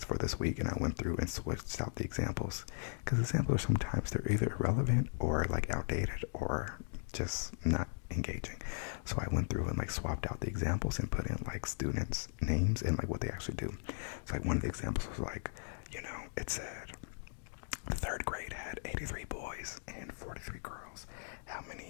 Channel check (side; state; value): right; silent; digital silence